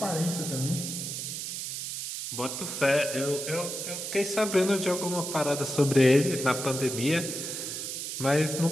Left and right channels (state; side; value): noise; right; hiss, 5 dB below the sound